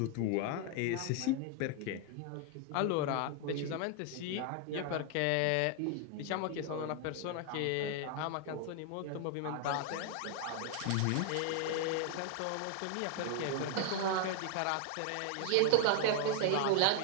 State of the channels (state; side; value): different; both; correlation 0.00